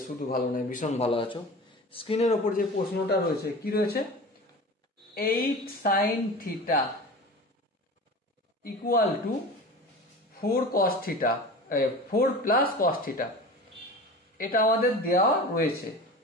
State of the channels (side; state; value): both; normal; correlation 0.35